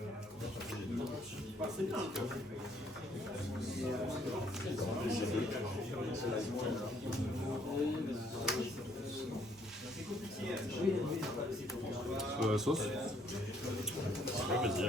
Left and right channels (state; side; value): normal; both; correlation 0.65